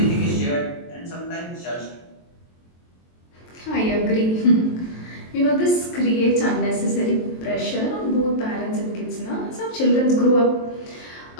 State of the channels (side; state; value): right; late; 23 ms